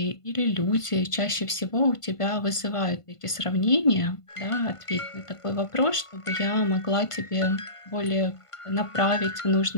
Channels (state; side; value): late; right; 1.5 ms